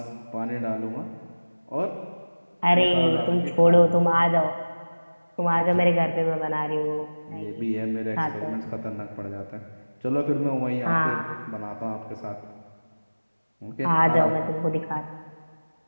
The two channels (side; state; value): both; inverted; correlation -1.00